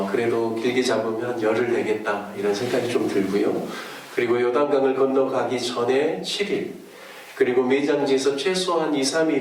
그래도 길게 잡으면 한 열흘 되겠다 이런 생각이 좀 들고요. 그리고 요단강을 건너가기 전에 7일, 그리고 매장지에서 최소한 2,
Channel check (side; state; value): both; identical; correlation 1.00